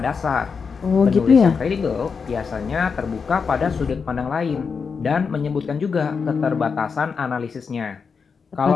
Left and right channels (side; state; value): right; quieter; 5.6 dB